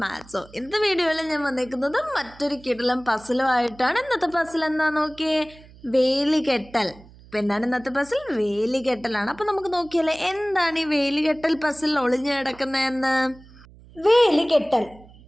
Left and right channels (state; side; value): noise; right; hum, 23 dB below the sound